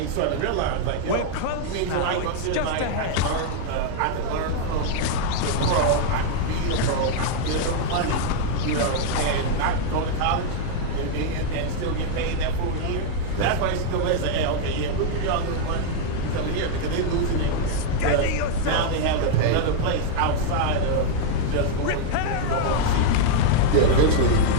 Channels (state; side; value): different; both; correlation -0.01